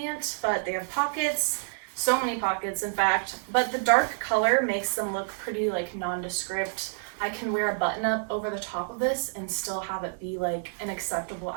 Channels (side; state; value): left; silent; digital silence